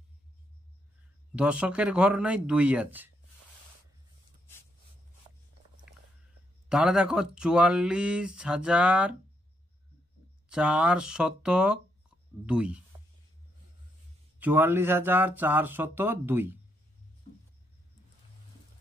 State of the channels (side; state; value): both; normal; correlation 0.77